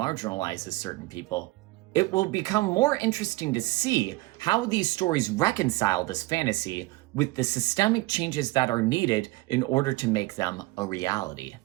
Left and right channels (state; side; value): quieter; left; 20.7 dB